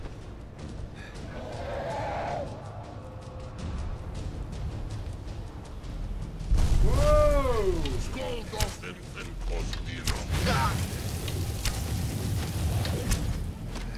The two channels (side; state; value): both; identical; correlation 1.00